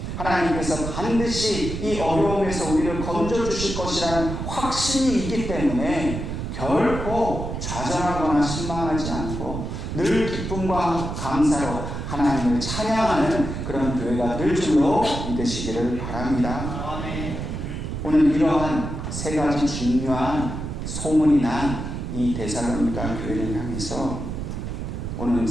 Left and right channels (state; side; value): noise; right; rumble, 5 dB below the sound